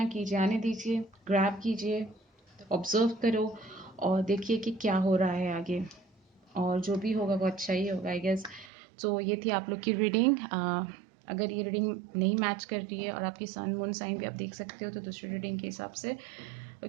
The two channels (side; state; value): left; drops out; at 8.7 s